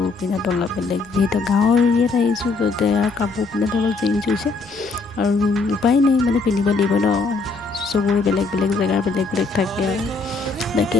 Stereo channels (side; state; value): right; quieter; 4.0 dB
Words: পিন্ধাটো অলপ বেলেগ যিহেতু গাঁৱৰ এৰিয়াত আহিছোঁ য'তে কাপোৰ পিন্ধাটো অলপ চেঞ্জ হৈছে আৰু উপায় নাই মানে পিন্ধিব লাগিব ন চবৰে বেলেগ বেলেগ জেগাৰ বেলেগ থাকে আৰু তাকে